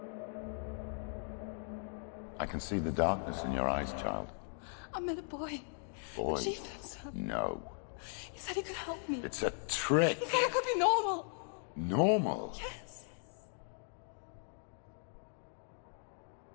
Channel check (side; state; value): right; silent; 52 dB below the other